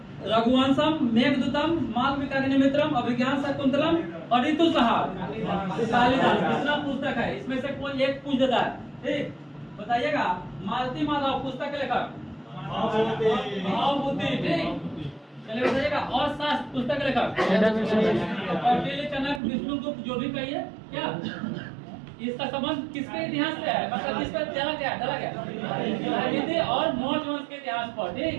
रघुवंशम, मेघदूतम, मालविकाग्निमित्रम, अभिज्ञान शाकुंतलम और ऋतुसंहार कालिदास कितना पुस्तक है? इसमें से कोई एक पूछ देता है, ठीक। बताइएगा, मालती माधव पुस्तक के लेखक भावभूति, ठीक। चलिए बताइएगा, और शास्त्र पुस्तक के लेखक कौटिल्य, चनक, विष्णुगुप्त, जो भी कहिए। क्या इसका संबंध किसके इतिहास से है? मतलब किस पर डाला गया और मौर्य वंश के इतिहास पर, ठीक।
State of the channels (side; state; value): left; drops out; at 19.4 s